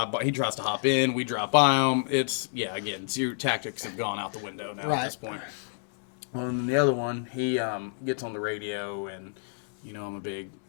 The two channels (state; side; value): silent; right; digital silence